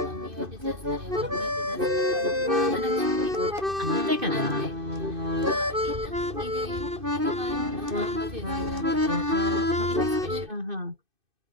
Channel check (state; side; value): late; left; 2.6 ms